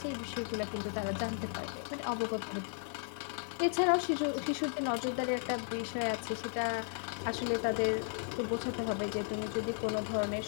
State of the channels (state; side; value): silent; right; 54 dB below the other